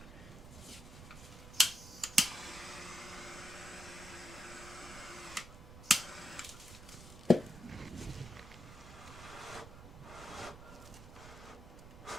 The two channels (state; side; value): noise; right; rumble, 15 dB below the sound